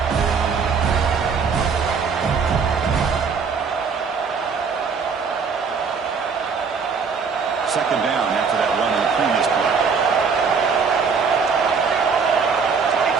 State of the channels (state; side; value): quieter; left; 5.6 dB